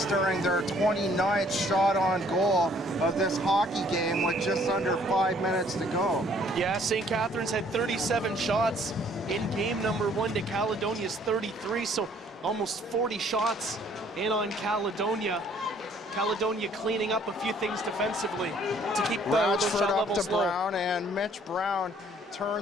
their 29th shot on goal of this hockey game with just under 5 minutes to go. Yeah, St. Catharines had 37 shots in game number 1 to Caledonia's 33, so almost 40 shots in on Caledonia. Caledonia cleaning up a few things defensively to keep the shot up levels to low. Brown, and Mitch Brown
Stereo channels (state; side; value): normal; both; correlation 0.60